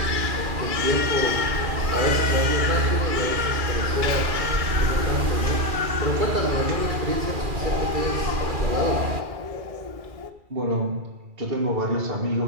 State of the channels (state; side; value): late; left; 2.3 ms